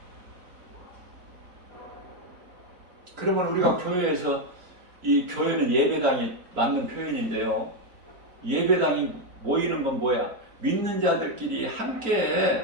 그러면 우리가 교회에서 이 교회는 예배당이 맞는 표현인데요. 예배당이 모이는 건 뭐야? 믿는 자들끼리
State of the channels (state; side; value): late; left; 4.4 ms